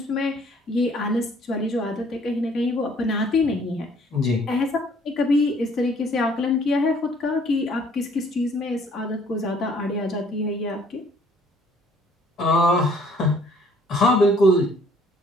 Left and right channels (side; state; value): both; normal; correlation 0.60